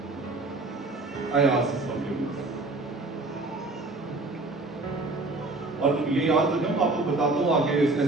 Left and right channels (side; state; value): left; quieter; 3.2 dB